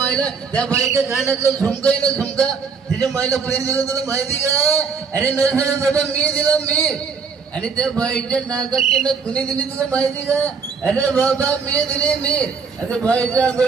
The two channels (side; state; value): left; quieter; 5.5 dB